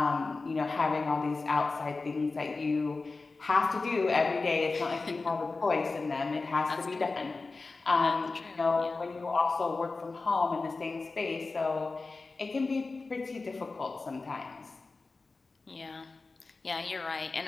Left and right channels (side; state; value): right; quieter; 3.8 dB